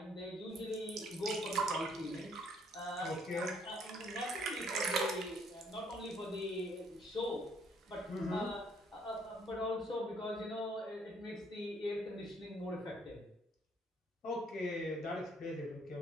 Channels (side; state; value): both; normal; correlation 0.65